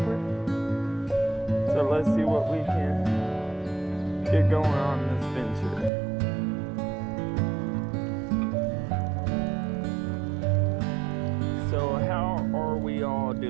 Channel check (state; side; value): drops out; left; at 5.9 s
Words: So let's see what we can get going on this venture. So how are we all